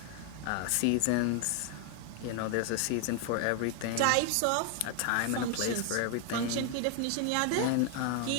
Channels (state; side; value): different; both; correlation 0.00